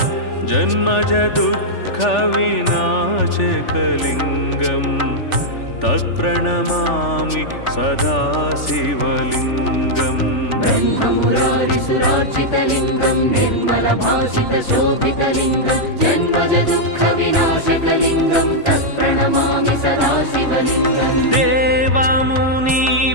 जन्मजदुःखविनाशकलिङ्गं तत्प्रणमामि सदा शिवलिङ्गम् ब्रह्ममुरारिसुरार्चितलिङ्गं निर्मलभासितशोभितलिङ्गं जन्मजदुःखविनाशकलिङ्गं तत्प्रणमामि सदा शिवलिङ्गम्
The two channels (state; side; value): late; right; 3.4 ms